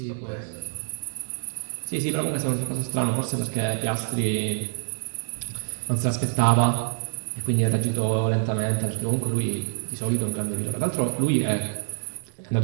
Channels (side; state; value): left; silent; 61 dB below the other